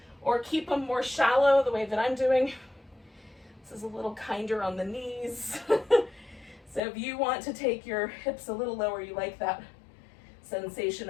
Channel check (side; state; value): right; drops out; at 6.8 s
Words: or keep them more shallow the way that I'm doing. This is a little kinder on the knees. So if you want to take your hips a little lower, you like that sensation